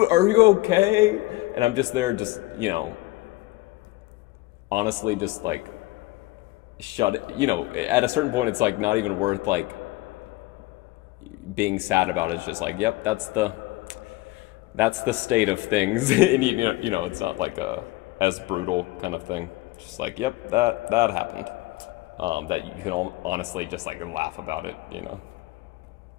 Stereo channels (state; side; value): quieter; right; 19.9 dB